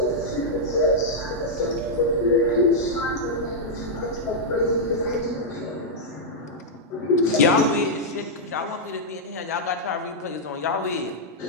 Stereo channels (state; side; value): normal; both; correlation -0.06